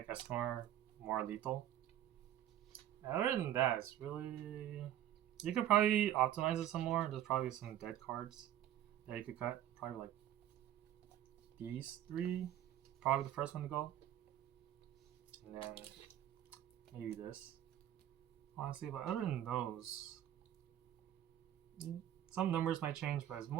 Escanor more lethal. Other than that, it's really. You could probably optimize it some more. There's probably some dead cards that you could cut. Probably like these 3. Probably the first one to go. And then maybe this. Honestly, but other than those, some numbers might change, but it's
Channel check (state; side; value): quieter; left; 12.0 dB